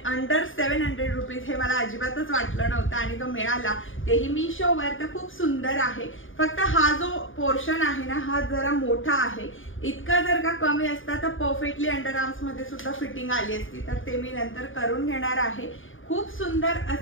अंडर 700 रुपीज, हे मला अजिबातच वाटलं नव्हतं आणि तो मिळाला, तेही मिशोवर। तर खूप सुंदर आहे, फक्त हा जो पोर्शन आहे ना, हा जरा मोठा आहे। इतका जर का कमी असता तर परफेक्टली अंडर आर्म्स मध्ये सुद्धा फिटिंग आली असती, तर ते मी नंतर करून घेणार आहे। खूप सुंदर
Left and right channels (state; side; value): late; right; 0.58 ms